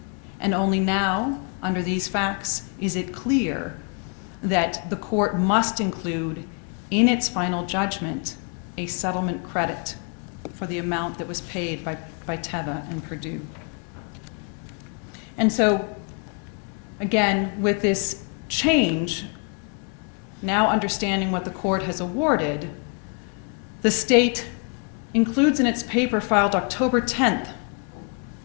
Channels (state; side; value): quieter; right; 38.6 dB